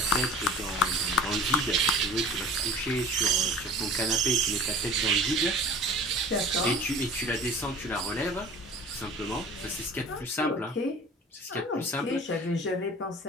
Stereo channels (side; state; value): both; normal; correlation 0.42